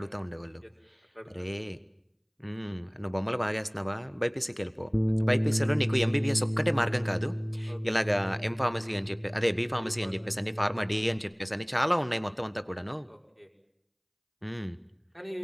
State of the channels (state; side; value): identical; both; correlation 1.00